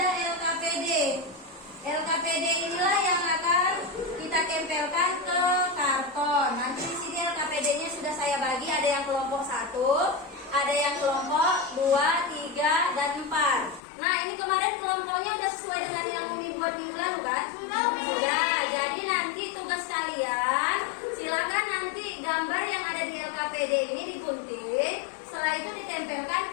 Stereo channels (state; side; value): drops out; right; at 13.8 s